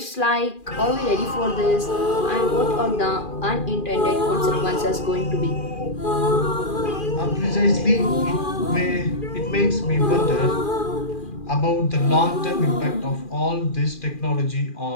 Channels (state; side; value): late; right; 2.4 ms